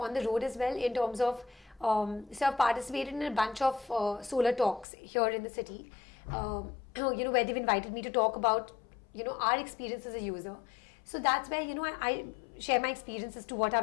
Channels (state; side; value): drops out; right; at 4.9 s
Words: the road as well, in terms of so I've participated in a bunch of solar talks here in the city, where they've invited me to talk about our experience as a user. So that's where I share my experiences to what